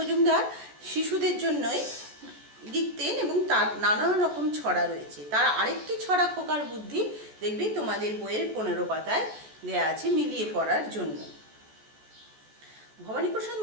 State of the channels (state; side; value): late; left; 14 ms